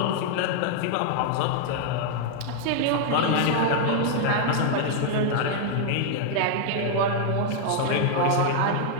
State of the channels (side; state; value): both; different; correlation -0.01